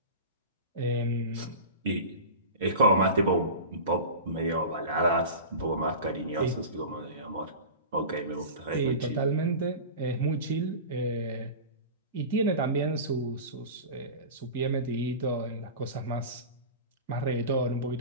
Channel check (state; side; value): inverted; both; correlation -0.31